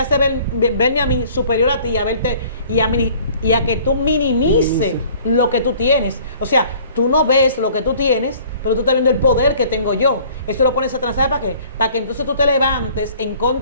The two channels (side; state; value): both; inverted; correlation -0.52